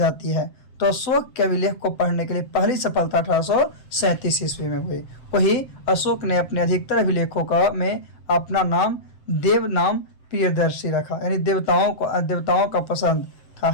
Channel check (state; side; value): late; right; 7.8 ms